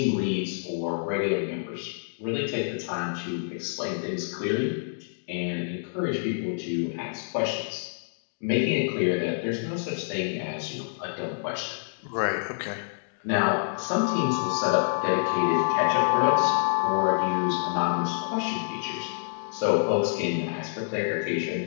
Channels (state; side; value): silent; right; digital silence